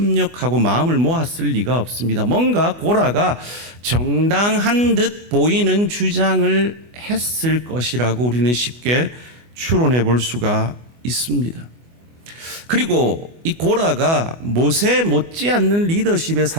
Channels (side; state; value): left; late; 24 ms